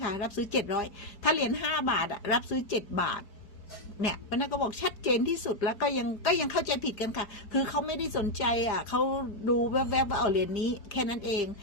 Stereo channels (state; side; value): late; right; 4.6 ms